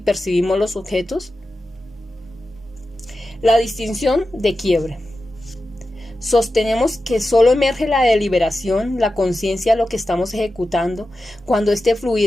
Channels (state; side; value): normal; both; correlation 0.92